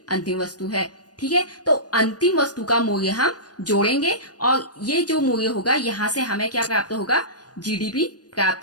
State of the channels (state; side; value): late; right; 0.69 ms